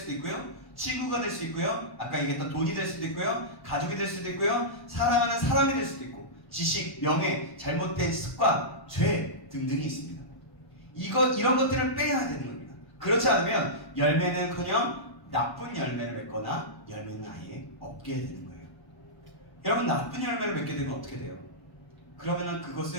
있고요, 친구가 될 수 있고요, 아까 얘기했던 돈이 될 수도 있고요, 가족이 될 수도 있고요, 사랑하는 사람이 될 수도 있고, 지식, 명예, 잘못된 습관, 죄 등등이 있습니다. 이런 것들을 빼야 되는 겁니다. 그렇지 않으면 열매는커녕 나쁜 열매를 맺거나 열매는 아예 없게 되는 거예요. 여러분, 나쁜 열매를 맺게 되면 어떻게 돼요? 그러면은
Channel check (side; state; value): right; late; 1.1 ms